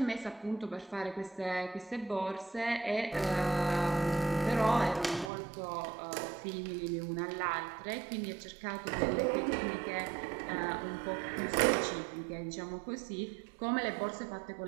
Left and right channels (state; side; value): drops out; left; at 5.3 s